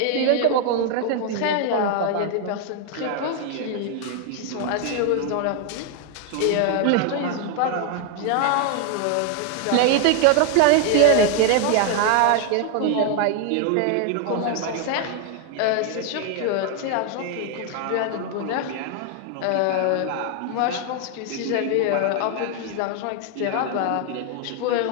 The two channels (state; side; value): different; both; correlation 0.01